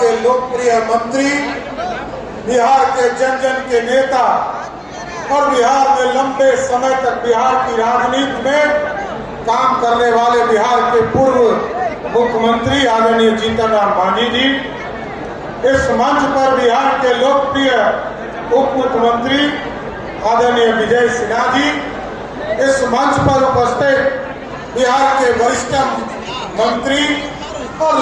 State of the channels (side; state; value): both; identical; correlation 1.00